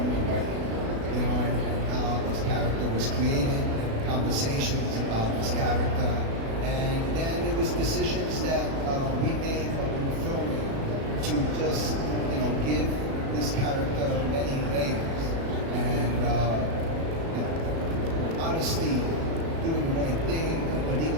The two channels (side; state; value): left; late; 36 ms